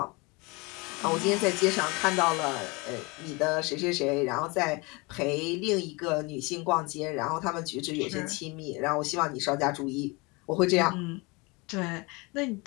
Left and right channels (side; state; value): right; quieter; 26.9 dB